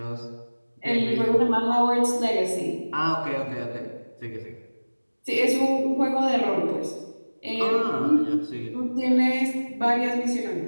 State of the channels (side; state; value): both; inverted; correlation -1.00